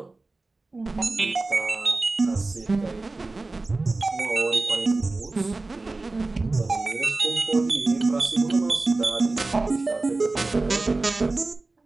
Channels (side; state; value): left; quieter; 3.3 dB